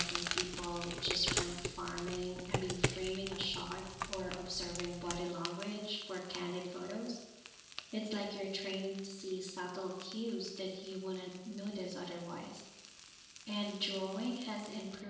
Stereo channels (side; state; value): both; identical; correlation 1.00